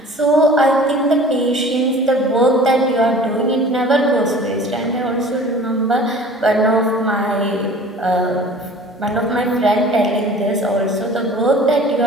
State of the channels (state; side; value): normal; both; correlation 0.45